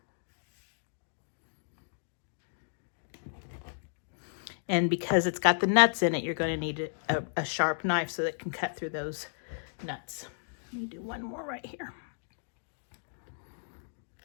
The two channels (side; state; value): right; silent; digital silence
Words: And because it's got the nuts in it, you're going to need a sharp knife so that it can cut through those nuts. Let me do one more right here.